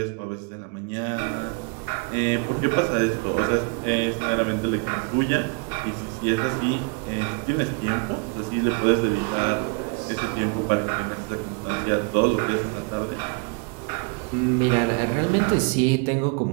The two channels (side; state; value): left; quieter; 32.8 dB